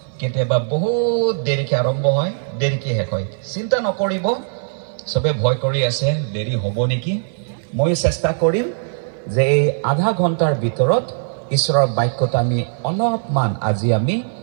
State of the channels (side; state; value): left; silent; 58 dB below the other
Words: কেতিয়াবা বহুত দেৰিকে আৰম্ভ হয় দেৰিকে শেষ হয় চিন্তা নকৰিব সবে ভয় কৰি আছে দেৰি হ'ব নেকি মই চেষ্টা কৰিম যে এই আধা ঘণ্টাৰ ভিতৰত ঈশ্বৰৰ বাক্যটো আমি অলপমান আজি আমি